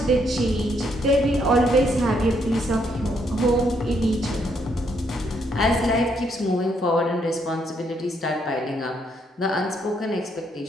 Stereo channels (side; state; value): both; normal; correlation 0.73